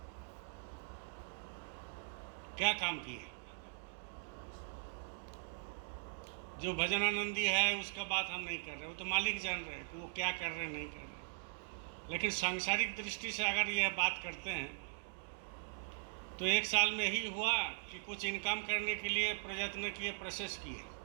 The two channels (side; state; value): left; silent; digital silence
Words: क्या काम किए? जो भजन आनंदी है उसका बात हम नहीं कर रहे, वो तो मालिक जान रहे हैं कि वो क्या कर रहे हैं, नहीं कर रहे। लेकिन सांसारिक दृष्टि से अगर यह बात करते हैं तो 1 साल में ही हुआ कि कुछ इनकम करने के लिए प्रयत्न किए, प्रोसेस किए,